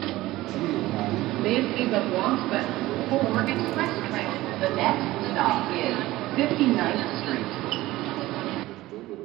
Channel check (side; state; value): left; quieter; 17.4 dB